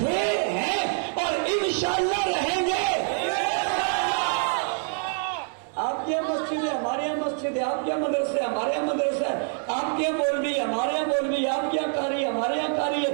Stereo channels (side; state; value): left; silent; 55 dB below the other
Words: ہیں اور انشاءاللہ رہیں گے. آپ کے مسجد ہے, ہمارے یہاں مسجد ہے. آپ کے مدرسے, ہمارے یہاں مدرسہ ہے. آپ کے مولوی, ہمارے یہاں مولوی. آپ کے یہاں قاری, ہمارے یہاں قاری